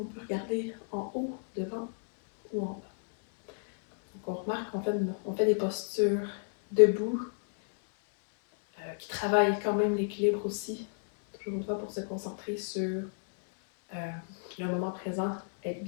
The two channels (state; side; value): silent; right; digital silence